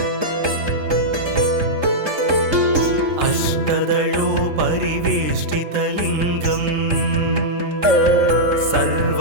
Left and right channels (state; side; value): late; left; 3.6 ms